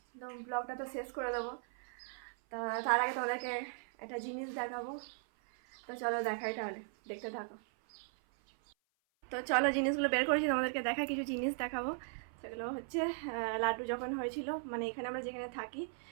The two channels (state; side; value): silent; left; 53 dB below the other